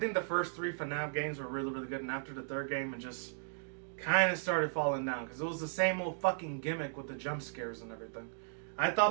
the first 3 FNAF games were really, really good, and after the 3rd game, it just kind of started falling down, because it was the same old fucking gimmick with the jump scares and everything. I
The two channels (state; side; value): silent; left; digital silence